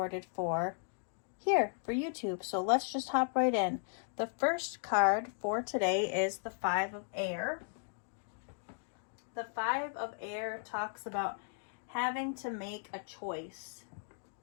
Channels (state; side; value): silent; right; digital silence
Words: for YouTube. So let's just hop right in. The first card for today is the 5 of Air. The 5 of Air talks about having to make a choice